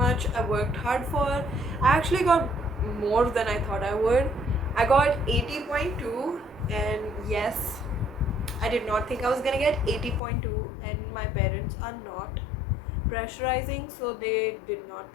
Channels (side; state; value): right; drops out; at 10.2 s